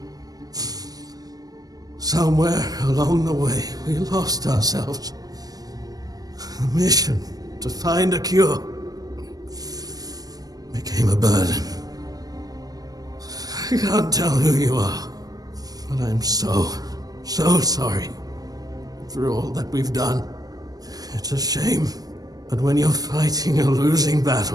Somewhere along the way, we lost ourselves. The mission to find a cure became a burden. I can't tell who you are, but I'm so sorry for all that we've done. It's a shame, but when you're fighting a losing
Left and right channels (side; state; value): left; late; 0.18 ms